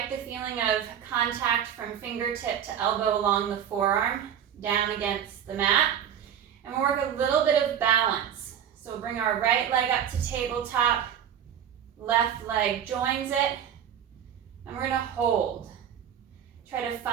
the feeling of contact from fingertip to elbow along the forearm, down against the mat. And we'll work a little bit of balance. So we'll bring our right leg up to tabletop, left leg joins it, and we're going to hold. Try to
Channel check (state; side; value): quieter; left; 9.2 dB